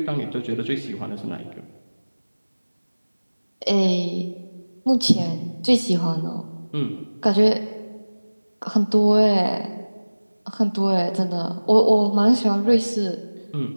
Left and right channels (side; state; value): both; inverted; correlation -1.00